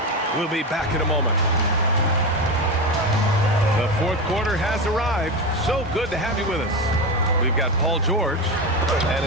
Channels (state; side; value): normal; both; correlation 0.18